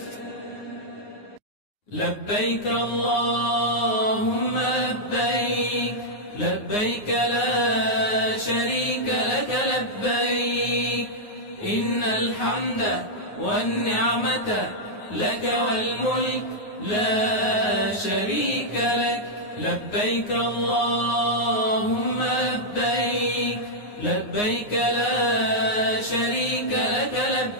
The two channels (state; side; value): late; right; 9.6 ms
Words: لبيك اللهم لبيك، لبيك لا شريك لك لبيك، إن الحمد والنعمة لك والملك لا شريك لك. لبيك اللهم لبيك، لبيك لا شريك لك